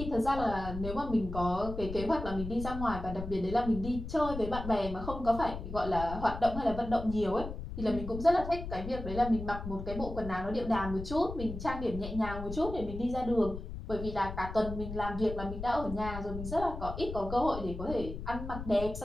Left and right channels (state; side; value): noise; left; rumble, 8 dB below the sound